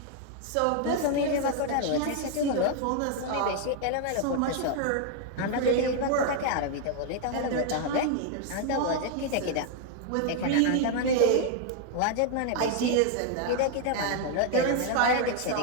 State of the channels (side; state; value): both; different; correlation 0.00